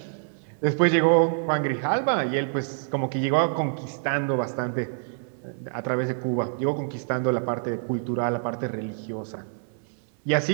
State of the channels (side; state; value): left; silent; 61 dB below the other